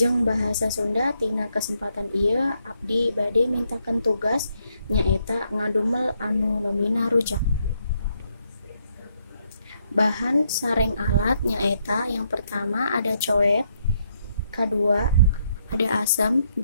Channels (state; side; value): inverted; both; correlation -0.76